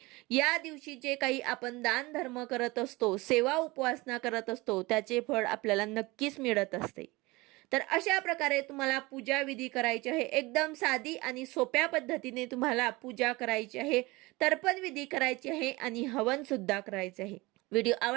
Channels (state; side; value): quieter; left; 22.5 dB